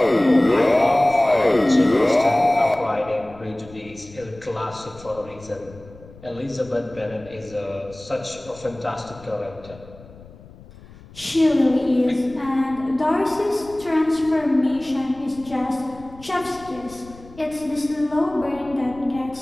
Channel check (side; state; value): left; noise; rumble, 21 dB below the sound